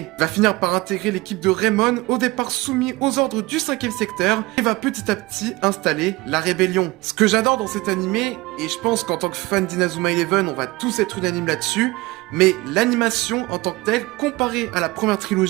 Il va finir par intégrer l'équipe de Raymond, au départ soumis aux ordres du 5ème secteur, et va petit à petit installer la rébellion. Ce que j'adore dans cet animé, et je pense qu'en tant que fan d'Inazuma Eleven, on va tous être unanimes là-dessus, mais l'animation en tant que telle, comparée à la première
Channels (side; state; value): left; quieter; 21.6 dB